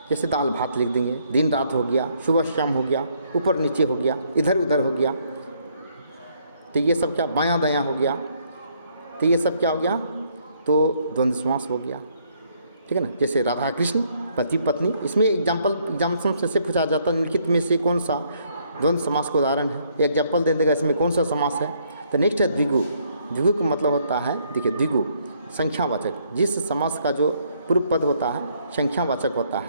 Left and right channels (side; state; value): both; inverted; correlation -0.69